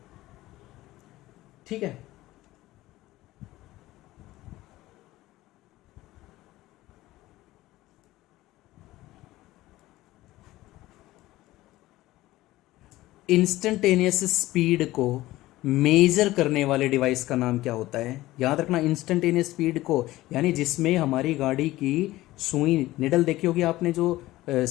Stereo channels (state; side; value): quieter; right; 17.0 dB